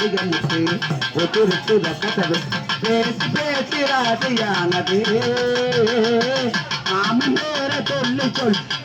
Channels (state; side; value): identical; both; correlation 1.00